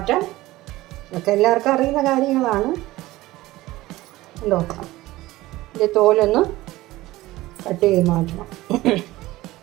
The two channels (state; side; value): quieter; left; 17.7 dB